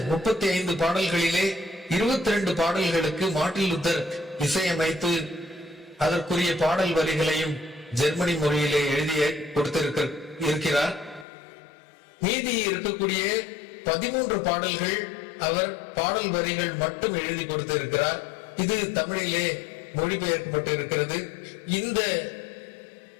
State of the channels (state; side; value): drops out; right; at 11.2 s